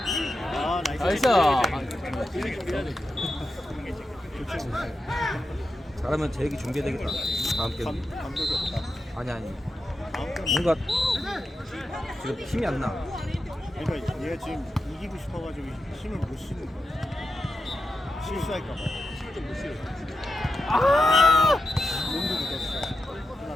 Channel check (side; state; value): both; normal; correlation 0.88